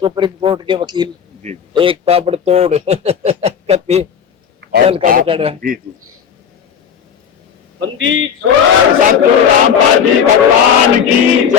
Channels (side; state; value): right; quieter; 7.6 dB